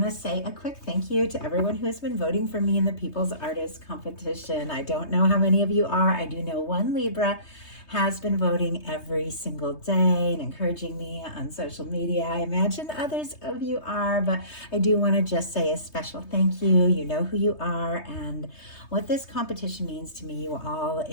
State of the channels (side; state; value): right; late; 3.3 ms